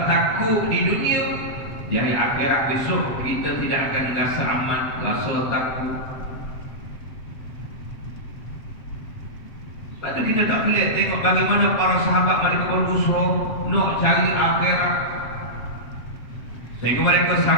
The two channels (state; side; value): late; right; 7.8 ms